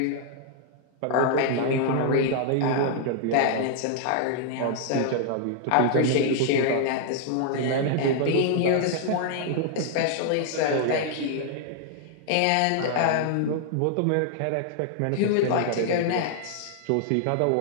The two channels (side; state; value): both; different; correlation -0.01